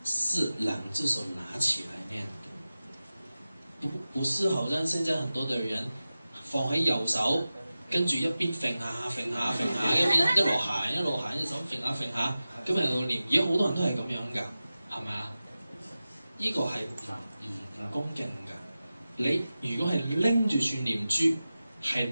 是兩隻手拿起來念的，不是好像現在很多的人放喺右手，跟住一邊揈下揈下揈下，一邊一路行一路行，隻手揈下揈下，咁喺度念。而家好多人都係咁樣㗎，係咪啊？呢個係唔恭敬㗎。你如果係拎住串念珠，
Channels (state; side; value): inverted; both; correlation -0.94